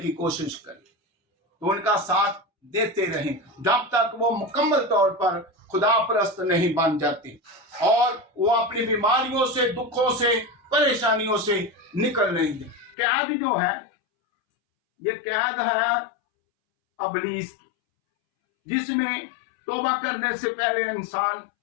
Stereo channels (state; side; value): drops out; right; at 13.0 s